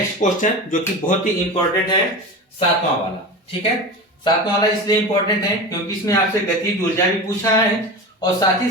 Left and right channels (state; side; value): normal; both; correlation 0.28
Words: क्वेश्चन जो कि बहुत ही इंपॉर्टेंट है, 7वां वाला। ठीक है, 7वां वाला इसलिए इंपॉर्टेंट है क्योंकि इसमें आपसे गतिज ऊर्जा भी पूछा है और साथ ही